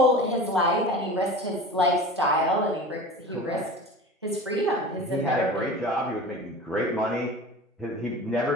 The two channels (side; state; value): both; normal; correlation 0.36